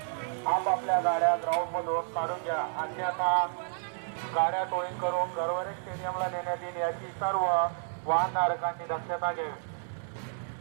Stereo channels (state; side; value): silent; left; 57 dB below the other